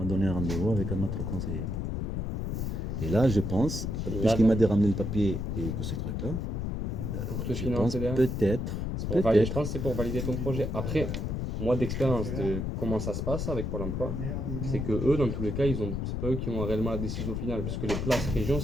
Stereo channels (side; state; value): left; noise; rumble, 2 dB below the sound